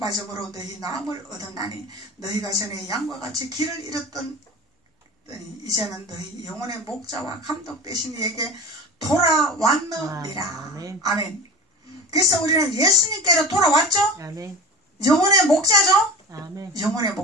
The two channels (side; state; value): both; normal; correlation 0.32